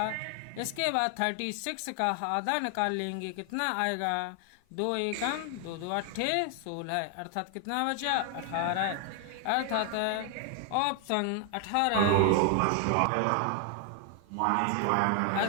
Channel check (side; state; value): both; different; correlation 0.00